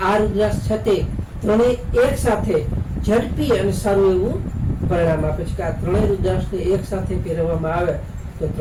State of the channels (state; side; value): identical; both; correlation 1.00